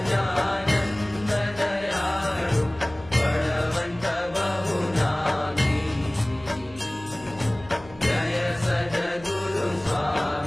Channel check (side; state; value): left; noise; hum, 20 dB below the sound